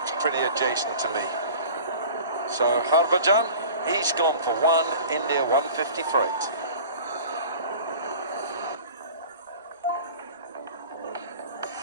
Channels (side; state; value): both; inverted; correlation -0.41